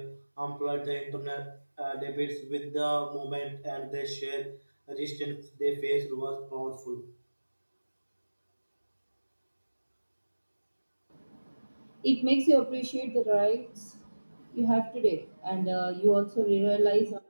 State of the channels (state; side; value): inverted; both; correlation -1.00